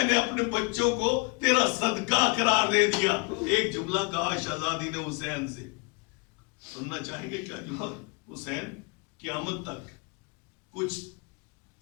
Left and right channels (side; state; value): right; quieter; 29.9 dB